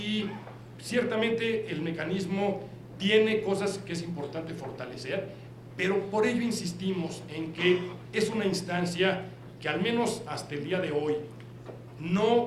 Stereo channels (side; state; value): both; identical; correlation 1.00